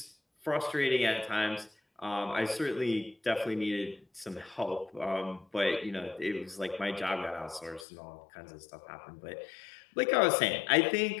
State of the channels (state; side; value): drops out; right; at 7.9 s